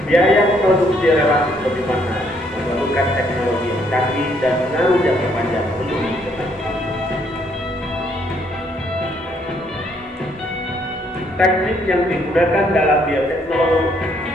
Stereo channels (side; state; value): both; normal; correlation 0.69